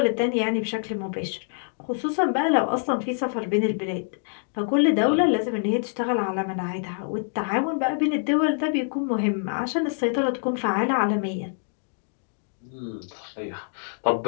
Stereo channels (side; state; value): right; silent; 61 dB below the other